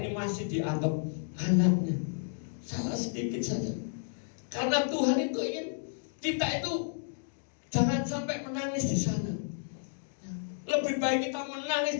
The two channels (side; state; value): right; silent; digital silence